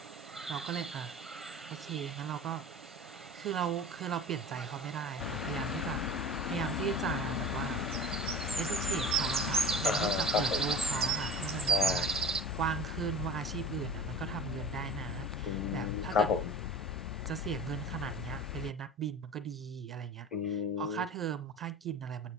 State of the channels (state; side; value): normal; both; correlation 0.38